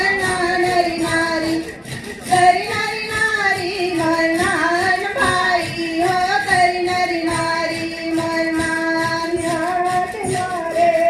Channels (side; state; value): both; identical; correlation 1.00